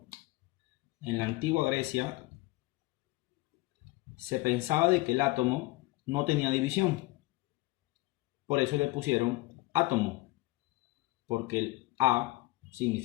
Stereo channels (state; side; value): quieter; right; 20.5 dB